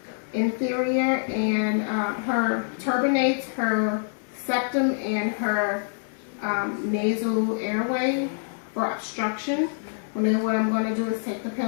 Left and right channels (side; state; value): right; silent; 61 dB below the other